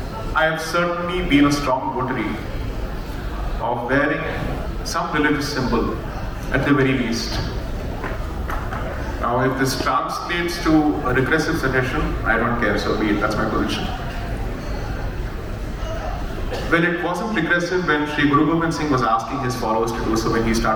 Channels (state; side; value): identical; both; correlation 1.00